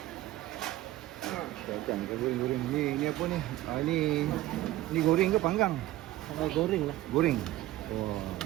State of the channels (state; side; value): quieter; left; 15.7 dB